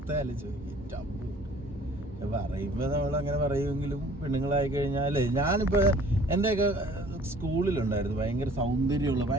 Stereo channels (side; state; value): both; normal; correlation 0.52